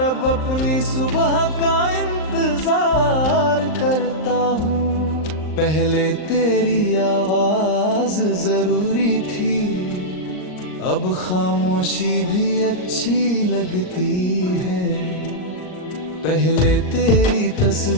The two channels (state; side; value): late; right; 39 ms